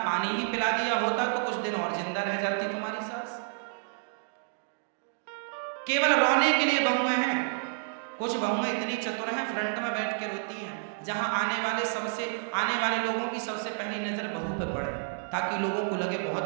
पानी ही पिला दिया होता तो कुछ दिन और जिंदा रह जाती तुम्हारी सास। केवल रोने के लिए बहुएं हैं। कुछ बहुएं इतनी चतुर हैं, फ्रंट में बैठ के रोती हैं, जहां आने वाले लोगों की सबसे पहली नजर बहू पे पड़े, ताकि लोगों को लगे बहुत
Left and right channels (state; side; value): silent; left; digital silence